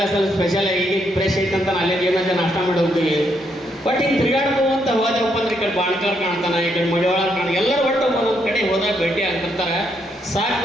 ಸರ್ ಸ್ಪೆಷಲ್ ಈಗ ಫ್ರೆಶ್ ಐತಂತ ಅಲ್ಲೇ ಏನಂತ ನಾಷ್ಟ ಮಾಡಿ ಹೋಗ್ತೀವಿ. ಬಟ್ ಹಿಂಗೆ ತಿರುಗಾಡ್ಬೋದು ಅಂತ ಹೋದಪ್ಪ ಅಂದ್ರೆ ಈ ಕಡೆ ಬಾಣ್ಕಾರ್ ಕಾಣ್ತಾನೆ, ಈ ಕಡೆ ಮಡಿವಾಳ ಕಾಣ್ತಾನೆ, ಎಲ್ಲರೂ ಒಟ್ಟು ಒಂದೊಂದು ಕಡೆ ಹೋದಾಗ ಭೇಟಿ ಆಗ್ತಿರ್ತಾರೆ. ಸಾಕು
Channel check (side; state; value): both; normal; correlation 0.76